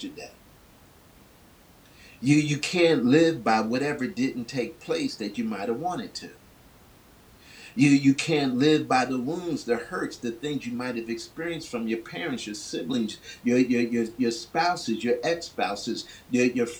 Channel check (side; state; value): both; identical; correlation 1.00